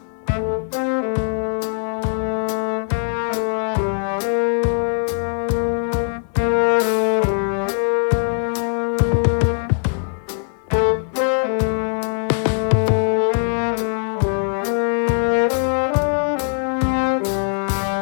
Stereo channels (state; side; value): silent; right; digital silence